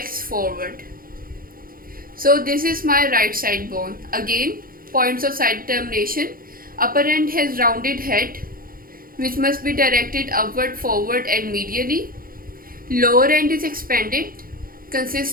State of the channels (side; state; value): left; late; 0.42 ms